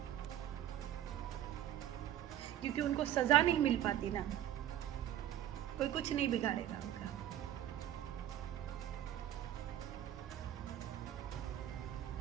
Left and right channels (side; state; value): left; quieter; 11.6 dB